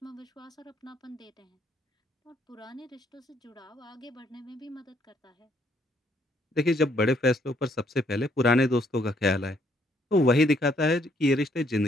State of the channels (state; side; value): normal; both; correlation 0.69